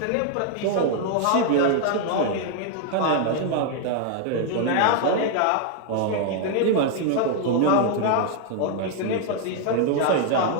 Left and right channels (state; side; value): different; both; correlation 0.00